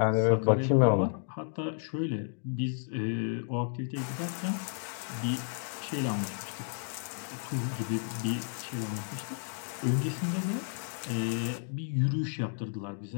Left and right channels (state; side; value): silent; right; digital silence